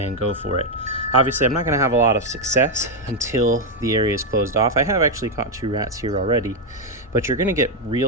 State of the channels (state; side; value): normal; both; correlation 0.03